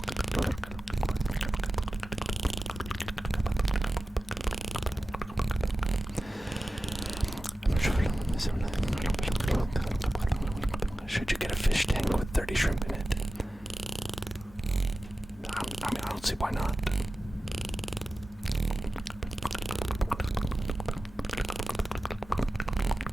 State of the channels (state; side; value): normal; both; correlation 0.94